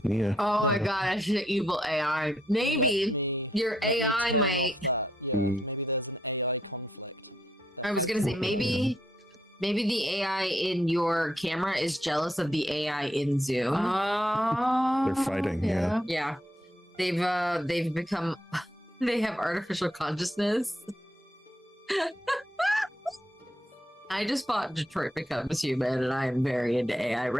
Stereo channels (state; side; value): normal; both; correlation 0.75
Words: Yeah. Oh my But- gosh, the evil AI. Maybe Let me, your let me AI turn might. off that. Yeah, Mm. maybe there's an AI conflict. They're I was gonna say fighting with each maybe the AI in your camera is jealous of the AI in Zoom. They're fighting, yeah. Yeah, they've become they have artificial consciousness. I just bought Detroit Becomes Human, and I am very into AI